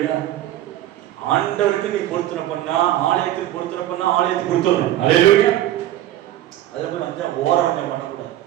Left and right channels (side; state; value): left; quieter; 13.5 dB